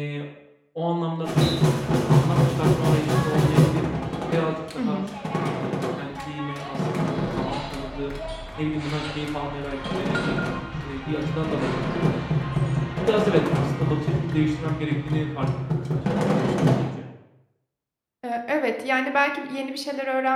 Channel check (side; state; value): both; identical; correlation 1.00